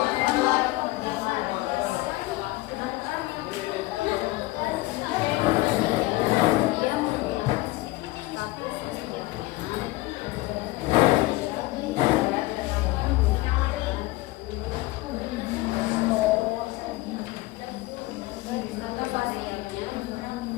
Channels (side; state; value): right; quieter; 19.6 dB